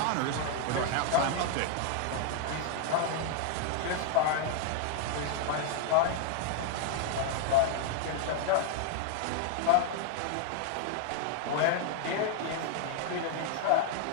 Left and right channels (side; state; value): both; different; correlation 0.00